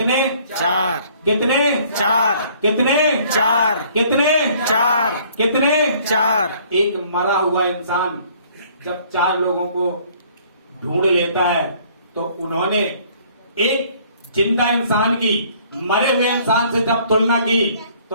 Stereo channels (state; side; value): inverted; both; correlation -0.58